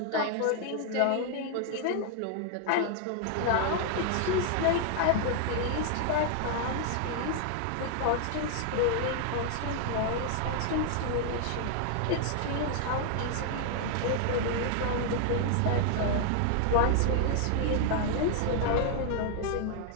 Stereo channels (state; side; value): different; both; correlation 0.00